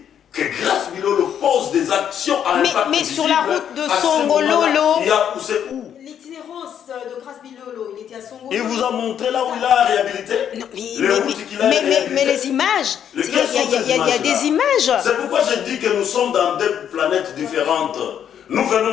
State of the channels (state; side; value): quieter; right; 9.1 dB